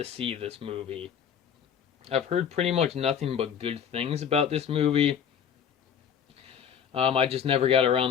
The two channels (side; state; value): right; quieter; 8.0 dB